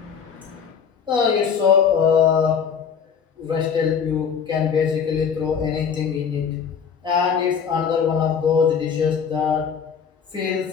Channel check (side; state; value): right; quieter; 6.8 dB